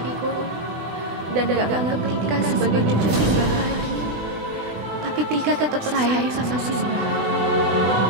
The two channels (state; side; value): late; left; 20 ms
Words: dan gak nganggep Tika sebagai cucu Simbah lagi, tapi Tika tetap sayang sama Simbah.